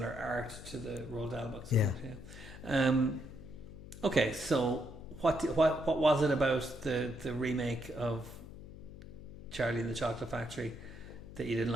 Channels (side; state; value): left; noise; hum, 14 dB below the sound